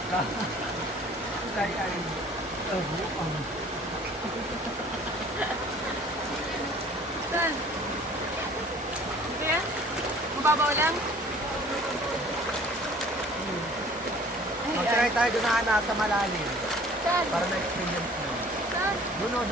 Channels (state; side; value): normal; both; correlation 0.51